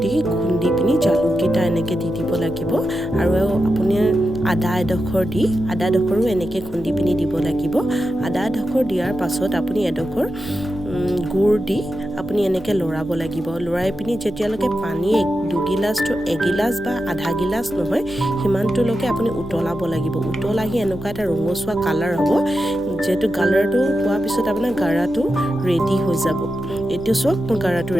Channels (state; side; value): noise; left; hum, 17 dB below the sound